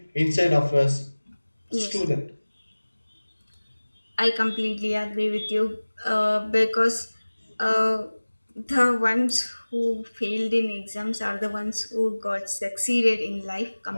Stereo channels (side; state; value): both; inverted; correlation -1.00